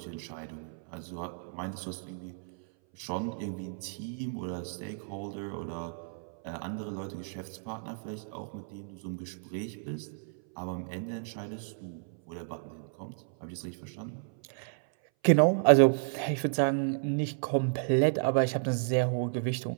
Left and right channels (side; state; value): left; silent; 56 dB below the other